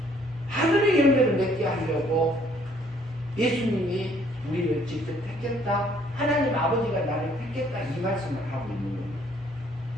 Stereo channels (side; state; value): both; normal; correlation 0.63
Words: 하늘의 열매를 맺게 하려고 예수님이 우리를 직접 택했다. 하나님 아버지가 나를 택했다. 이 말씀을 하고 있는 겁니다.